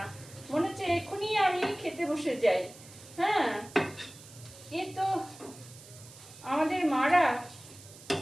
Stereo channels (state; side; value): noise; right; hiss, 19 dB below the sound